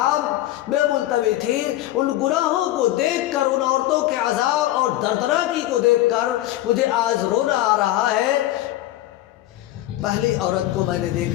میں ملتوی تھی۔ ان گناہوں کو دیکھ کر، ان عورتوں کے عذاب اور دردناکی کو دیکھ کر مجھے آج رونا آ رہا ہے۔ پہلی عورت کو میں نے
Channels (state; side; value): quieter; right; 14.9 dB